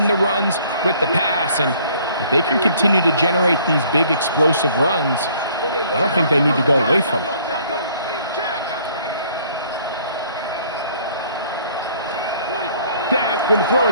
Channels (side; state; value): both; inverted; correlation -0.58